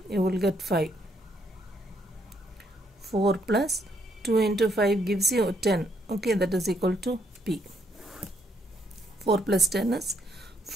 you will get 5. 4 plus 2 into 5 gives you 10. Okay, that is equal to p. 4 plus 10 is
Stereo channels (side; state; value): both; normal; correlation 0.73